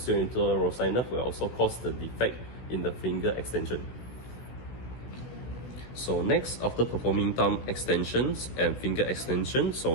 interosseous nerve, will also cause the defect in the finger extension. So next, after performing thumb extensions and finger extension, so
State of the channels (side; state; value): right; late; 16 ms